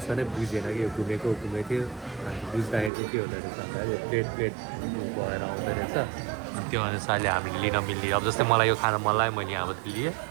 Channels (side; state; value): left; drops out; at 2.9 s